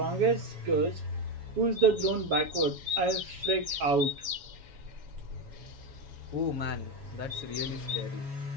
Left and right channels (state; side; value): late; left; 7.2 ms